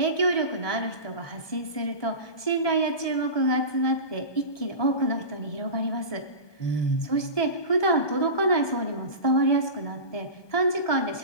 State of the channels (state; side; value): late; right; 1.2 ms